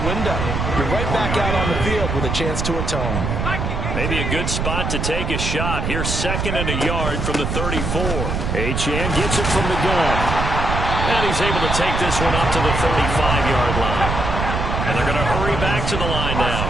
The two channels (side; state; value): right; noise; rumble, 2 dB below the sound